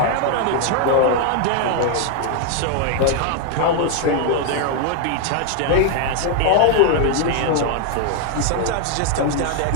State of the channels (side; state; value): both; different; correlation 0.00